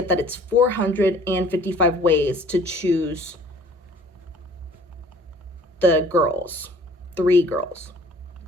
that it's 455 ways to choose the girls, 3 girls.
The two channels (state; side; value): normal; both; correlation 0.52